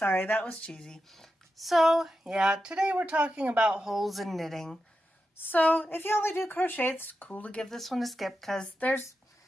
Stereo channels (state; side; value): normal; both; correlation 0.89